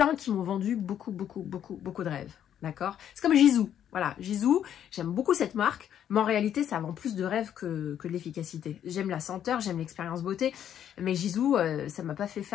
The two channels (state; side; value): quieter; right; 9.9 dB